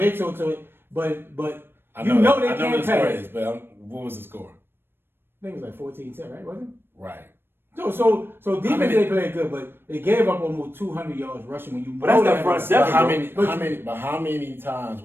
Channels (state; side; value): late; left; 0.10 ms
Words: but I you know they I can't the score pass. is, but what was the score? I think it was like 14-10, right? Wasn't it? Right. So defense they played good, but they gave up almost 200 yards rushing when you. But that's that front seven. How many times